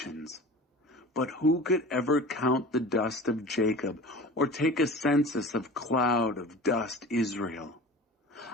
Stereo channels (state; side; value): normal; both; correlation 0.38